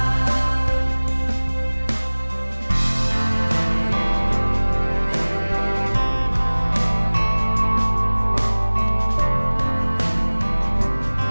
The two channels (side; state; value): both; inverted; correlation -1.00